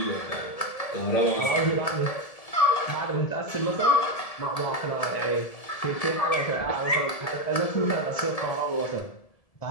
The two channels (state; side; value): late; right; 1.7 ms